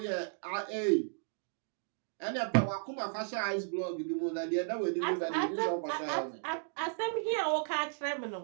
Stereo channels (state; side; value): silent; left; digital silence